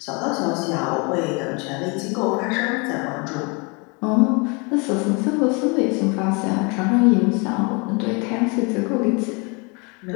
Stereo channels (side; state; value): right; quieter; 31.0 dB